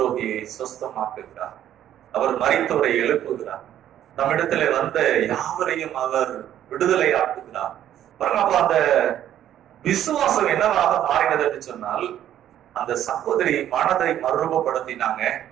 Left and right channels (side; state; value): left; quieter; 11.3 dB